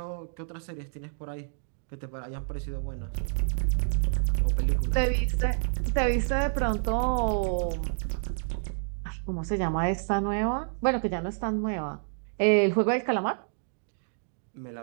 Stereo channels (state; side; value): silent; left; digital silence